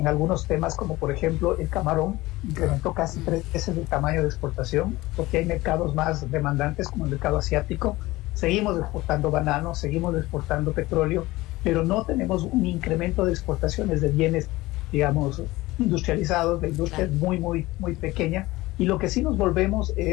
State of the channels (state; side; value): quieter; right; 19.3 dB